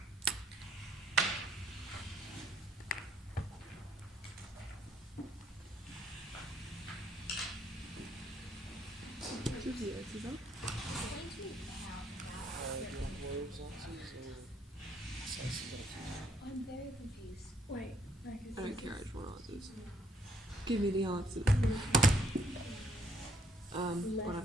Where's the X's on? Do you want World's answers or Sace got a few? I'm very confused. Wait, I don't care, I just want answers. Give me the answers. But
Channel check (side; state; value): both; normal; correlation 0.69